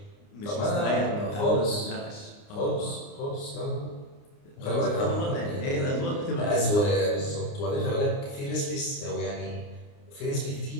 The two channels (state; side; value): late; right; 29 ms